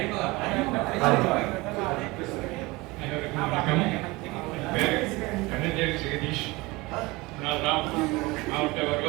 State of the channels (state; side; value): quieter; left; 22.6 dB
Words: வணக்கம். பேர் கண்ணஞ்சேரி ஜெகதீஷ். நான் மாவட்ட